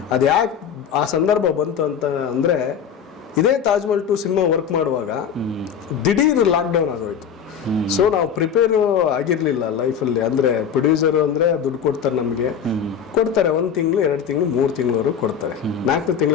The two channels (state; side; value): quieter; right; 7.7 dB